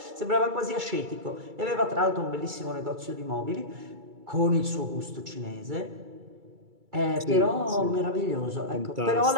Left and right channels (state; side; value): late; left; 2.3 ms